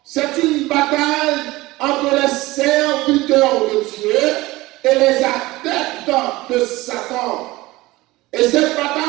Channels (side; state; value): left; quieter; 19.6 dB